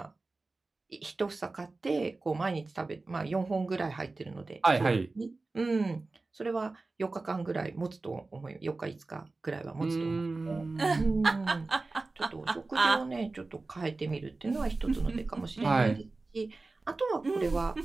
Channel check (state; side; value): quieter; left; 3.5 dB